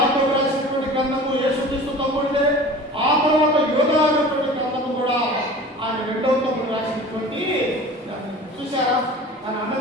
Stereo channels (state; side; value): normal; both; correlation 0.40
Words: రాసినటువంటి గ్రంథము యేసుక్రీస్తు తమ్ముడిదే. ఆ తర్వాత యోధా అనేటువంటి గ్రంథము కూడా ఆయన 2వ తమ్ముడు రాసినటువంటి. చూసారా ఆయన